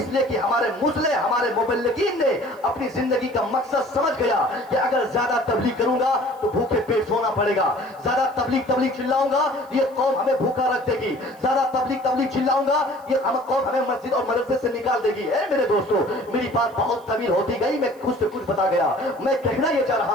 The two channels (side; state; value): right; noise; hiss, 29 dB below the sound